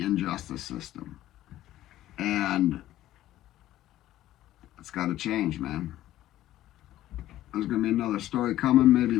injustice system, and it's got to change, man. There's going to be another story coming maybe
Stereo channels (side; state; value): right; quieter; 14.0 dB